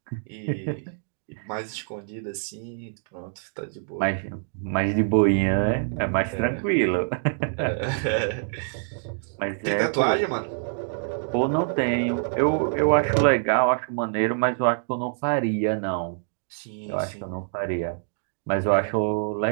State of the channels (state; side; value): silent; left; digital silence